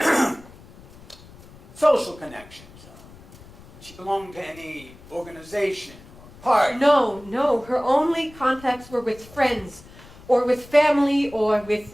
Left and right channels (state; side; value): noise; left; rumble, 21 dB below the sound